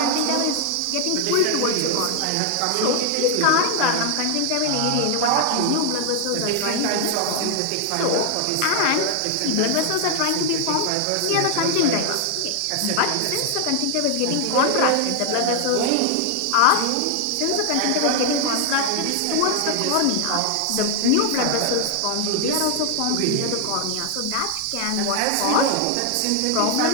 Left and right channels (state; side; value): different; both; correlation 0.00